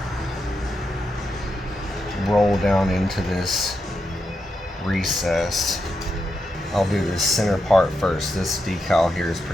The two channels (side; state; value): both; normal; correlation 0.85